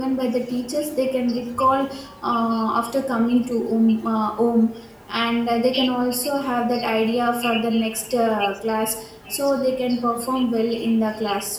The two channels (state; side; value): identical; both; correlation 1.00